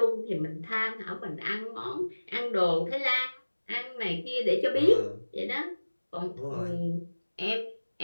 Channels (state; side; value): inverted; both; correlation -1.00